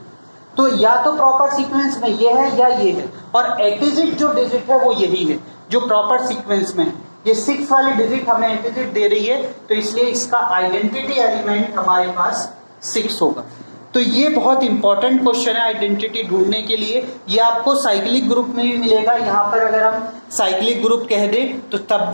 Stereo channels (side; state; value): both; inverted; correlation -1.00